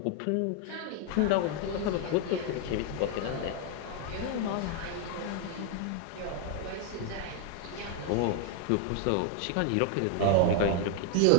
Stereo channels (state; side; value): different; both; correlation 0.00